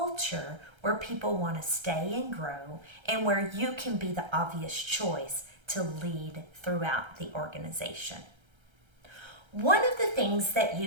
where people want to stay and grow and where you can be the obvious choice to lead throughout the organization. One of the things that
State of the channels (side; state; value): left; late; 1.3 ms